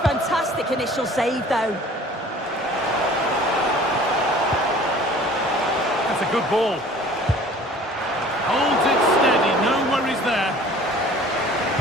fantastic initial save, though. That's a good ball. Holds it steady, no worries there.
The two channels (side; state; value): both; normal; correlation 0.48